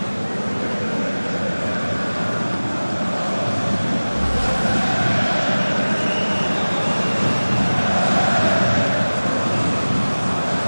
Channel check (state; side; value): inverted; both; correlation -1.00